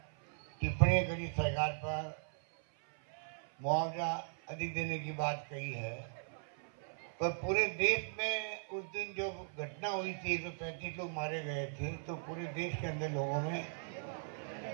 टिप्पणी करी सरकार पर, मुआवजा अधिक देने की बात कही है, पर पूरे देश में उस दिन जो घटना हुई थी, 135 लोग मारे गए थे, तो पूरे देश के अंदर लोगों में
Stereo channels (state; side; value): silent; left; 52 dB below the other